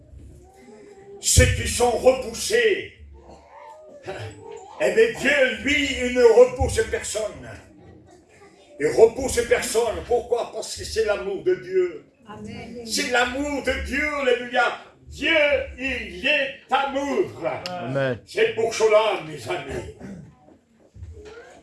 Ceux qui sont repoussés, eh bien Dieu, lui, il ne repousse personne. Il repousse personne. Pourquoi? Parce que c'est l'amour de Dieu. C'est l'amour de Dieu, alléluia. Dieu, il est amour. Amen. C'est pour cela, mes amis.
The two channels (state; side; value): identical; both; correlation 1.00